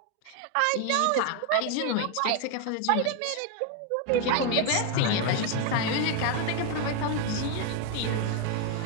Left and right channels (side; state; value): both; different; correlation 0.01